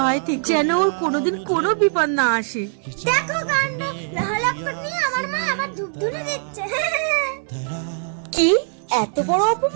থেকে, যেন ওর কোনোদিন কোনো বিপদ না আসে। দেখো কাণ্ড, লহলক্কর নিয়ে আমার মা আবার ধূপ ধুনে দিচ্ছে। কি এত বড়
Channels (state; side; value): silent; left; digital silence